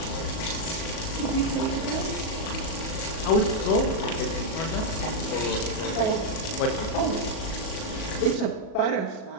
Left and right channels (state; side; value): late; right; 37 ms